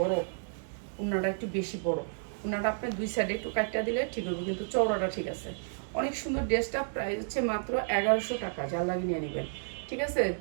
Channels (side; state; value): left; silent; digital silence